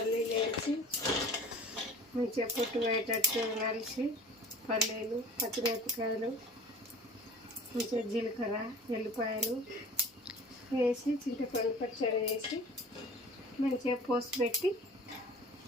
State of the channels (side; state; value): both; normal; correlation 0.44